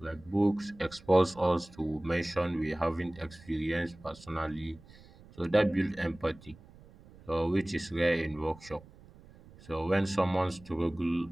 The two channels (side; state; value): right; noise; rumble, 22 dB below the sound